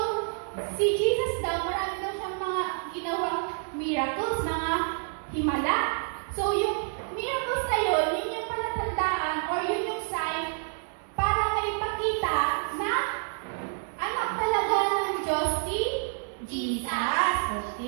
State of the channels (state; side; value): silent; left; 59 dB below the other